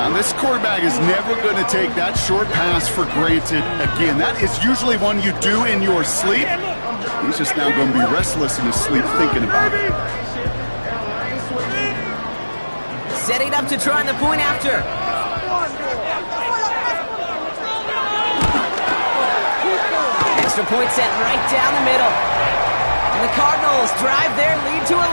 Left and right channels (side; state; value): both; inverted; correlation -1.00